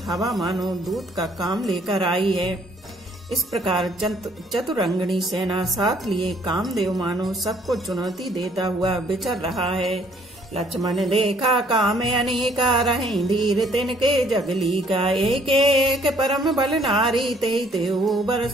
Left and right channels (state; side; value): normal; both; correlation 0.62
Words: हवा मानो दूत का काम लेकर आई है। इस प्रकार चतुरंगिनी सेना साथ लिए कामदेव मानो सबको चुनौती देता हुआ विचर रहा है। लक्ष्मण देखा काम अनेका, रहें धीर तिनके जगली का। एक एक परम बल नारी, ते